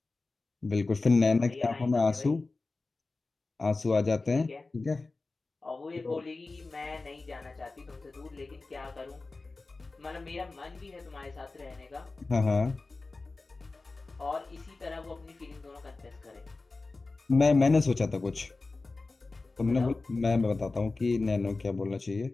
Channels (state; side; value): quieter; right; 3.5 dB